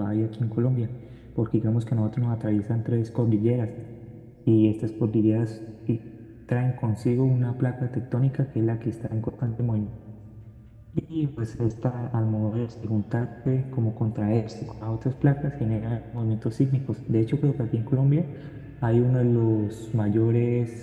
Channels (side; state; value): both; identical; correlation 1.00